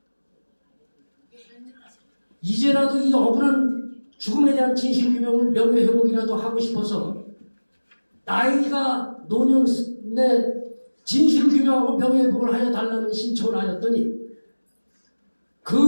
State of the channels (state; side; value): inverted; both; correlation -1.00